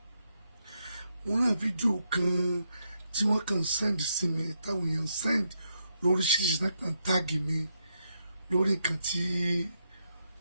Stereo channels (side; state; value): both; inverted; correlation -0.81